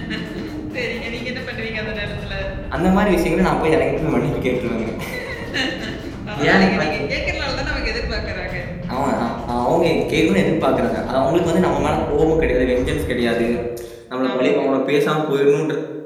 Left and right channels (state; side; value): identical; both; correlation 1.00